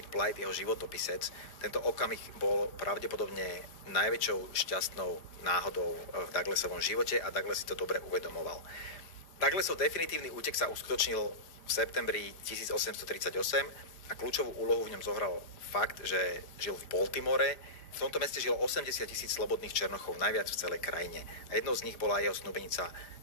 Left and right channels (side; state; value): right; late; 4.9 ms